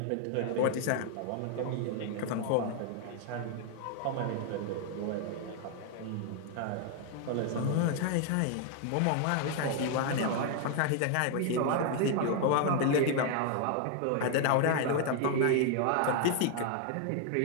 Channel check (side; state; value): both; different; correlation 0.00